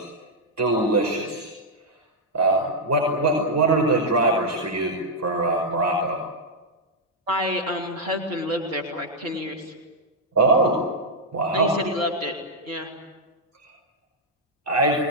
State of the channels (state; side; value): normal; both; correlation -0.03